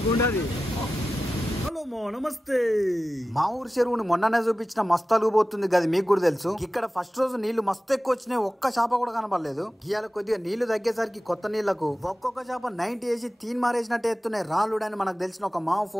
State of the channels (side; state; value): both; normal; correlation 0.94